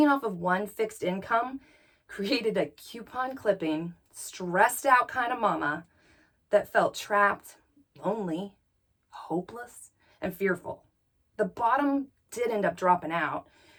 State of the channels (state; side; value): identical; both; correlation 1.00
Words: off of one fixed income created a coupon clipping, stressed out kind of mama that felt trapped, lonely, hopeless, and fearful. The bottom did end up dropping out